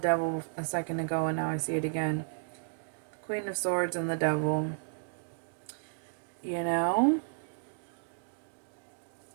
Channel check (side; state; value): left; silent; digital silence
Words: a second ago and now I see it again. The Queen of Swords and the devil. You know?